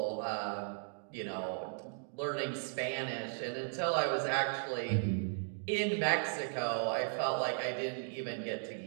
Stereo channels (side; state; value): left; silent; digital silence